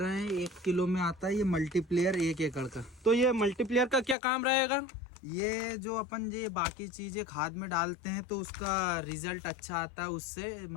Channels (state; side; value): drops out; right; at 4.2 s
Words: हैं 1 किलो में आता है ये मल्टीप्लेयर 1 एकड़ का। तो ये मल्टीप्लेयर का क्या काम रहेगा। ये जो अपन ये बाकी चीजें खाद में डालते हैं तो उसका रिजल्ट अच्छा आता है उससे,